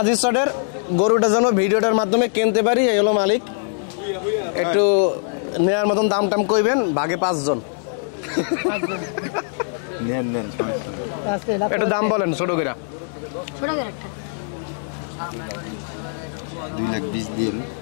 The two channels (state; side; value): silent; right; 64 dB below the other